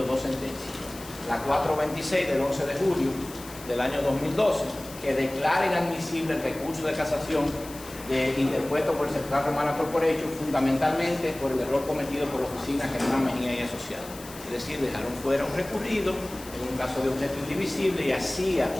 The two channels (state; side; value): noise; left; hiss, 16 dB below the sound